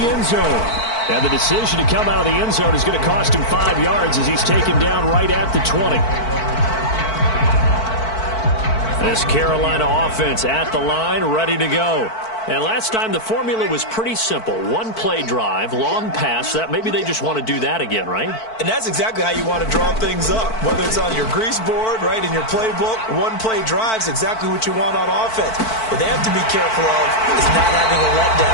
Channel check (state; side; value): late; right; 4.5 ms